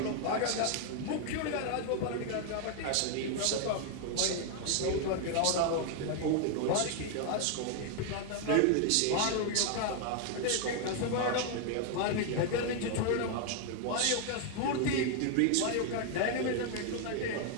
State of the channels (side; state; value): both; different; correlation 0.00